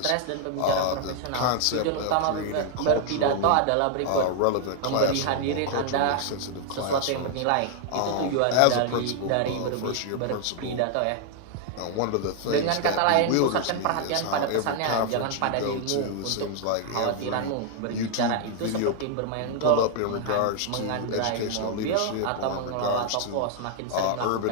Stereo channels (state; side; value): different; both; correlation 0.00